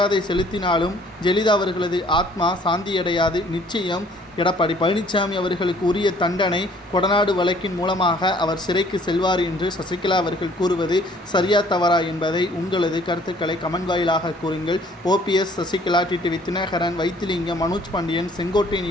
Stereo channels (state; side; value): normal; both; correlation 0.58